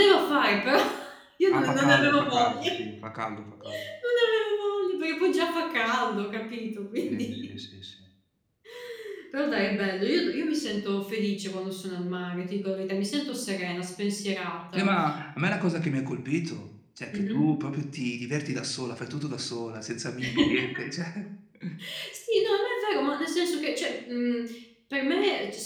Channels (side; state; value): both; identical; correlation 1.00